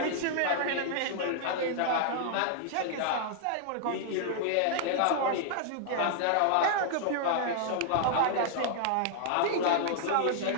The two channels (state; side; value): different; both; correlation -0.01